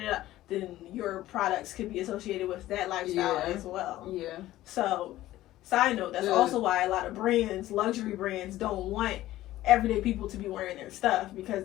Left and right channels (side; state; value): right; quieter; 15.2 dB